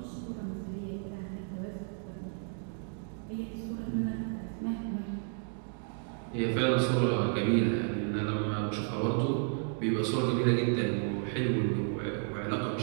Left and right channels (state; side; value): silent; left; 56 dB below the other